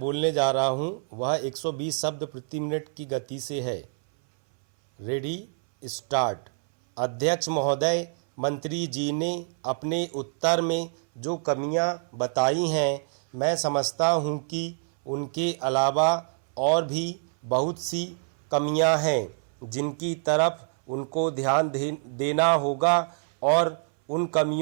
जा रहा हूँ वह 120 शब्द प्रति मिनट की गति से है। Ready start. अध्यक्ष महोदय, मंत्री जी ने अपने उत्तर में जो कमियां बताई हैं, मैं समझता हूं कि उनके अलावा और भी बहुत सी कमियां हैं जिनकी तरफ उनको ध्यान देना होगा और उन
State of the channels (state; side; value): silent; left; 59 dB below the other